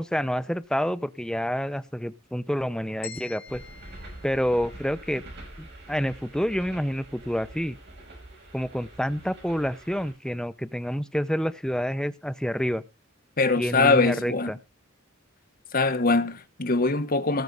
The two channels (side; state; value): both; normal; correlation 0.55